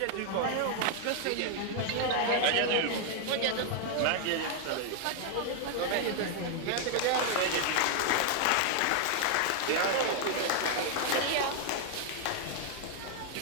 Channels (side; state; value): both; different; correlation 0.00